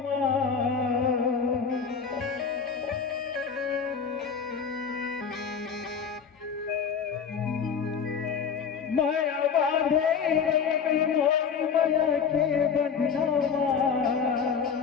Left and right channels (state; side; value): quieter; right; 6.5 dB